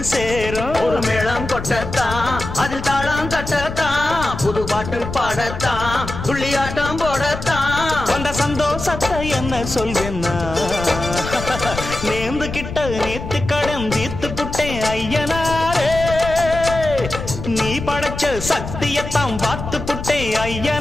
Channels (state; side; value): noise; left; rumble, 8 dB below the sound